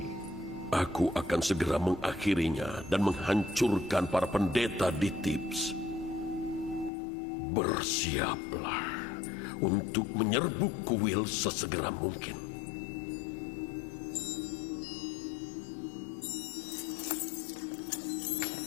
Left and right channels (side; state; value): right; drops out; at 6.9 s